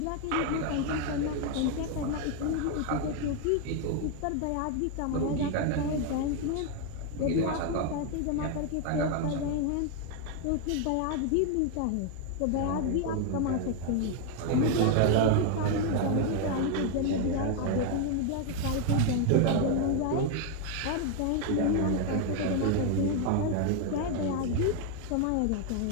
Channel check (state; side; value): different; both; correlation 0.01